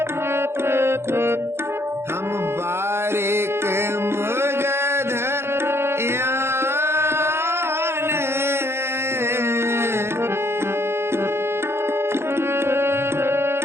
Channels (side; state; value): left; late; 0.12 ms